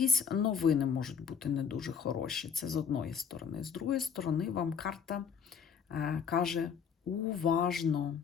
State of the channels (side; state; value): right; quieter; 6.7 dB